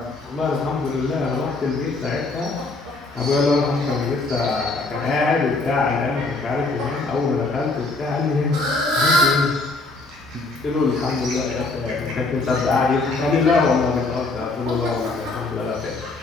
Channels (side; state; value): right; quieter; 3.4 dB